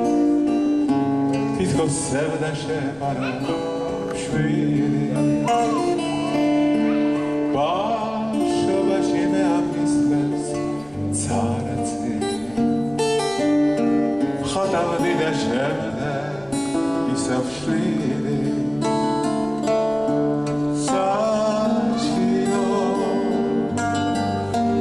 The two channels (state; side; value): noise; right; rumble, 25 dB below the sound